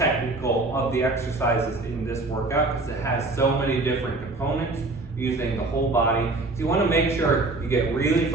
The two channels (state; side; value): quieter; left; 3.2 dB